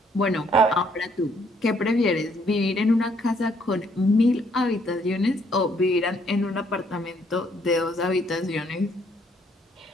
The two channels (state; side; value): normal; both; correlation 0.67